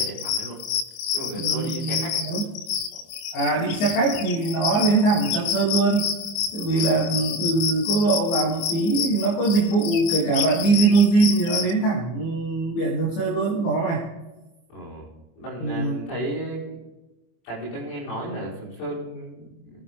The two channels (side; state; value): right; late; 25 ms